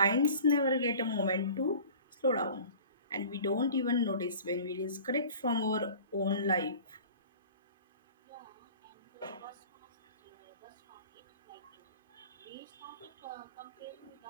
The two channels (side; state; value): both; inverted; correlation -0.43